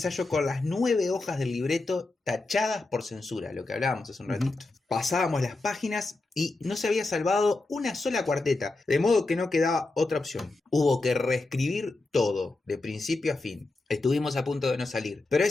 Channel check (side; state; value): right; quieter; 3.2 dB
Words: con las 9 hojas del libreto tachadas por censura, lo que hablábamos hace un ratito. Pasábamos las páginas y no se había salvado una sola cuarteta, de modo que no quedaba otra opción. Hubo que reescribir todo, de principio a fin. Estuvimos a punto de no salir. Pero